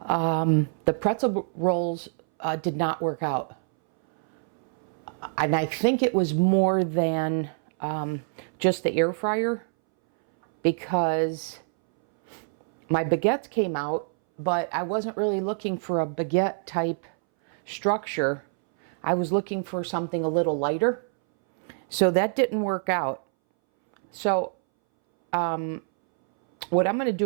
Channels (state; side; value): silent; left; 61 dB below the other